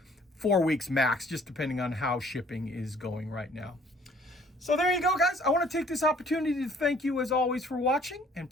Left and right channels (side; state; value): both; normal; correlation 0.58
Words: weeks max, just depending on how shipping is going right now. So there you go, guys. I want to take this opportunity to thank you as always for watching, and